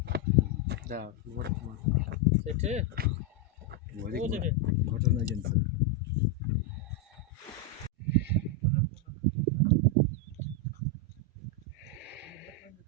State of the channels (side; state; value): both; normal; correlation 0.03